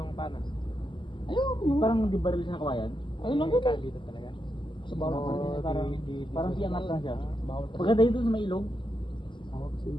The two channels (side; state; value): right; late; 0.24 ms